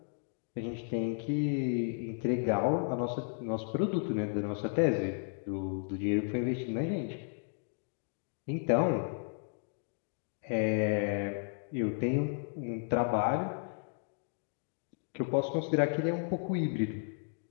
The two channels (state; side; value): silent; right; digital silence